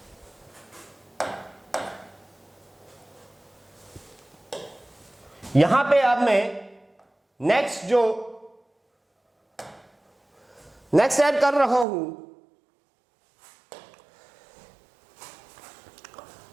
यहां पे अब मैं नेक्स्ट ऐड कर रहा हूं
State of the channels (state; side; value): drops out; left; at 11.9 s